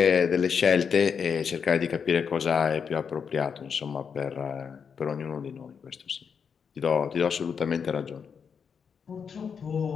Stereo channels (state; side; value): quieter; right; 6.5 dB